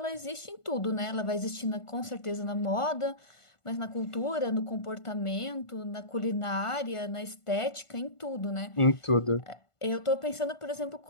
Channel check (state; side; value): late; right; 1.5 ms